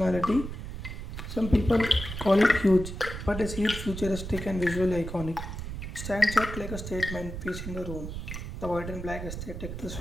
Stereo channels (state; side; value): noise; right; rumble, 7 dB below the sound